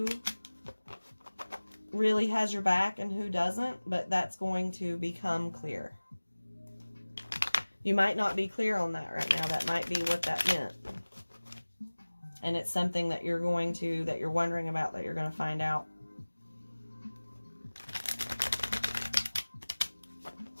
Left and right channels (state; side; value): inverted; both; correlation -1.00